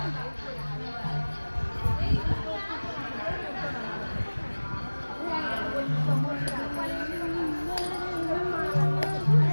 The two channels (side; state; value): both; inverted; correlation -1.00